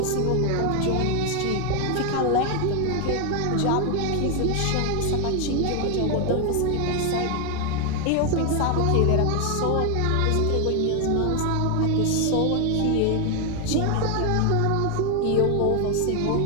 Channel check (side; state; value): both; different; correlation 0.01